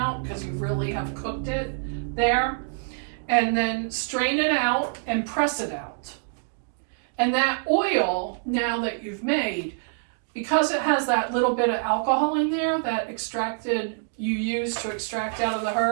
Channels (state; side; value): silent; left; digital silence